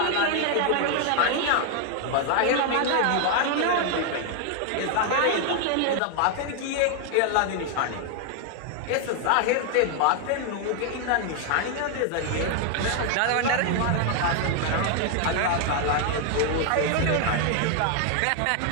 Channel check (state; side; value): different; both; correlation 0.00